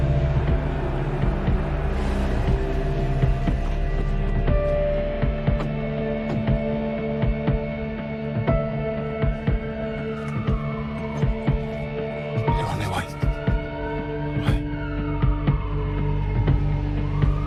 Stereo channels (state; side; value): identical; both; correlation 1.00